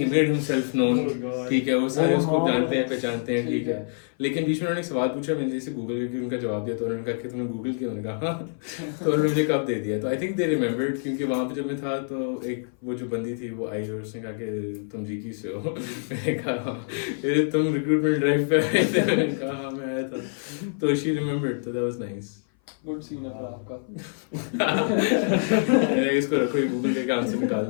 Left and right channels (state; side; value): silent; right; 57 dB below the other